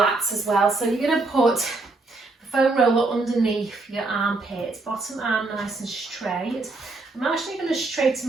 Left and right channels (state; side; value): quieter; left; 3.4 dB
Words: as well. So you're going to put the foam roller underneath your armpit, bottom arm nice and straight. I'm actually going to straighten